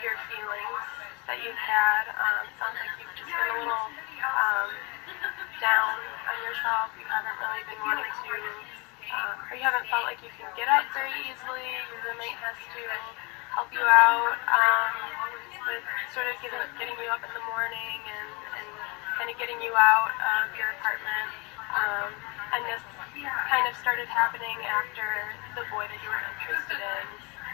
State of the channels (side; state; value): right; quieter; 28.8 dB